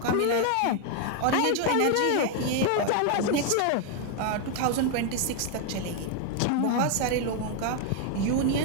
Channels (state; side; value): different; both; correlation 0.01